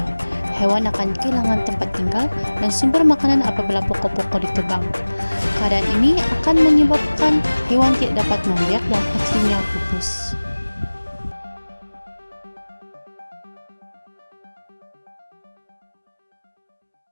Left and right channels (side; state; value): both; inverted; correlation -1.00